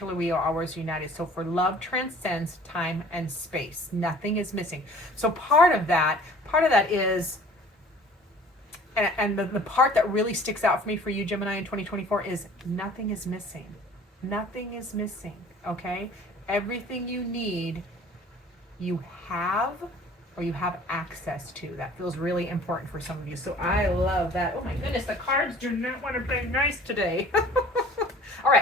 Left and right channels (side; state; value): both; normal; correlation 0.49